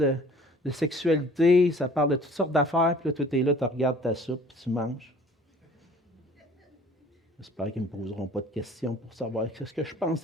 de sexualité, ça parle de toutes sortes d'affaires. Puis là, toi, tu es là, tu regardes ta soupe, puis tu manges. J'espère qu'ils ne me poseront pas de questions pour savoir ce que je pense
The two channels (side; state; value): both; normal; correlation 0.51